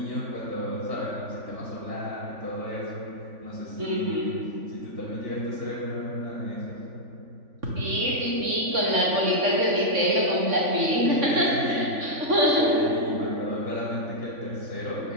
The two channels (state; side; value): late; left; 3.5 ms